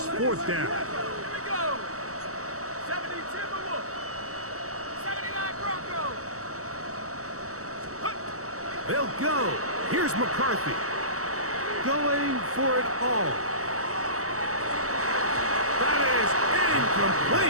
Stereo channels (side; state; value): left; late; 0.65 ms